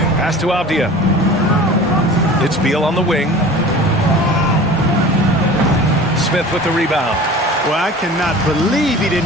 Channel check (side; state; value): both; normal; correlation 0.40